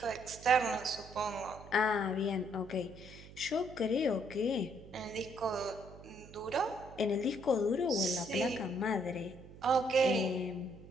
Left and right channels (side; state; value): right; noise; hum, 17 dB below the sound